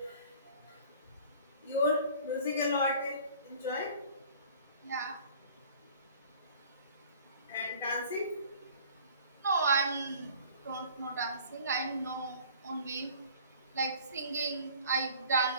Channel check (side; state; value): both; inverted; correlation -0.49